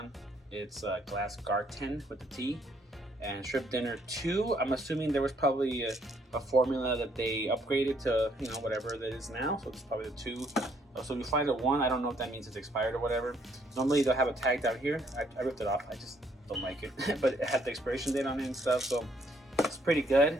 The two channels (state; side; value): normal; both; correlation 0.68